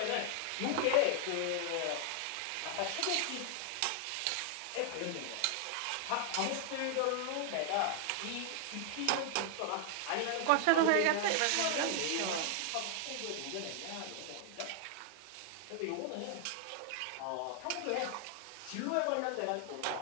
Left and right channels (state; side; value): different; both; correlation 0.00